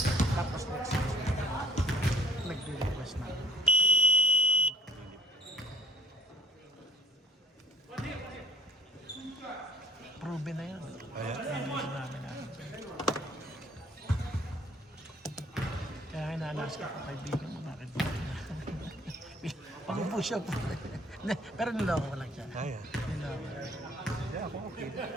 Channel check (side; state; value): both; normal; correlation 0.56